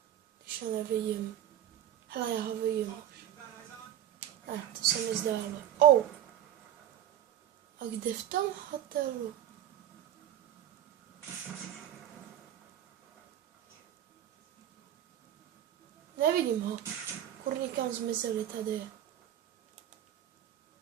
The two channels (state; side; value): quieter; left; 11.0 dB